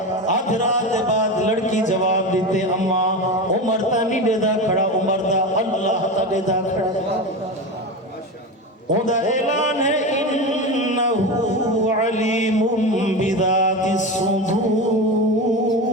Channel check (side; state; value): both; normal; correlation 0.22